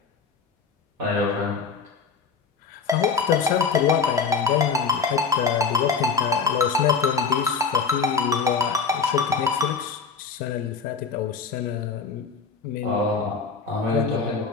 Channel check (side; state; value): right; quieter; 5.3 dB